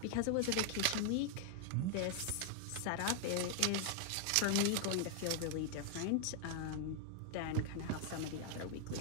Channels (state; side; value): different; both; correlation 0.00